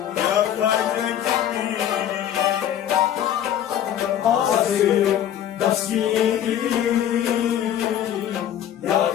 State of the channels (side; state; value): right; quieter; 10.5 dB